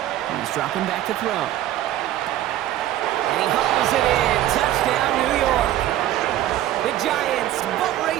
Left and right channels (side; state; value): left; quieter; 13.2 dB